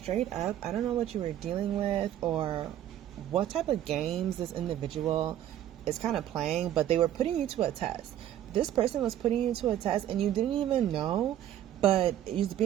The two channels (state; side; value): quieter; left; 11.7 dB